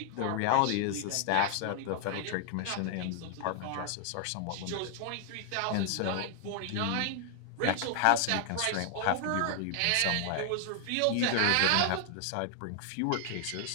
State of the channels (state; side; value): different; both; correlation 0.00